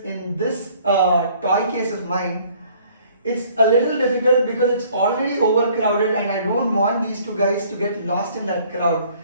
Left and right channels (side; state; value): both; inverted; correlation -0.58